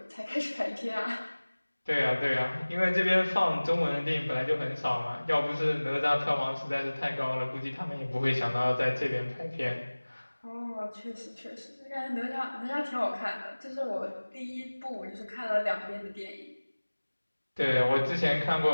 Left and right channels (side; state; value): both; inverted; correlation -1.00